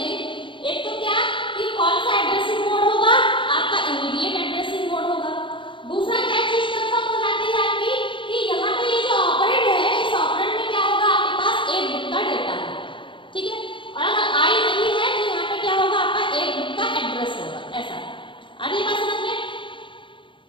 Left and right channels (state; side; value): late; right; 0.24 ms